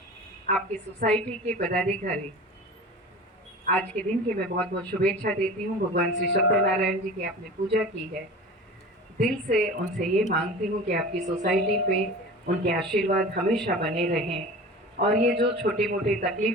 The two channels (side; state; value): both; normal; correlation 0.37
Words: आपकी सोसाइटी के पदाधिकारी, आज के दिन की मैं बहुत बहुत शुभेच्छा देती हूँ. भगवान श्री सत्यनारायण जी की आपने पूजा की है, दिल से उनसे ये मांगती हूँ कि आपकी सोसाइटी पे उनके आशीर्वाद हमेशा बने रहें और ये जो छोटी मोटी